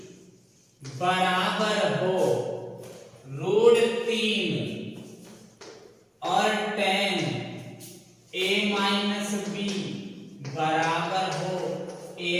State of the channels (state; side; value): identical; both; correlation 1.00